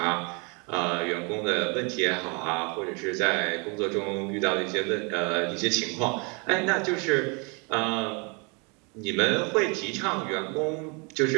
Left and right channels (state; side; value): quieter; left; 32.1 dB